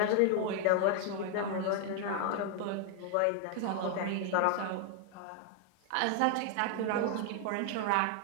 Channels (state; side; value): different; both; correlation 0.00